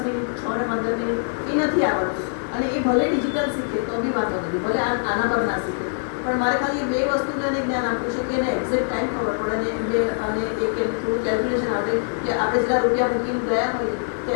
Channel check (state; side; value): silent; right; digital silence